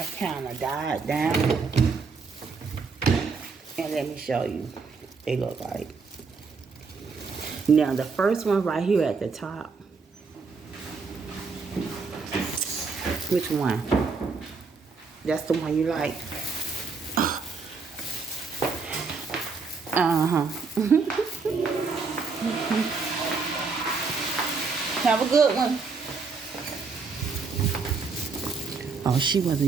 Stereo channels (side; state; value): left; quieter; 4.7 dB